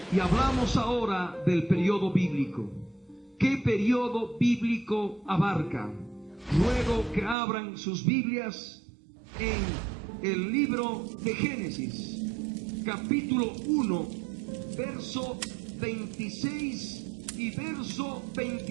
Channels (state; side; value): drops out; left; at 7.4 s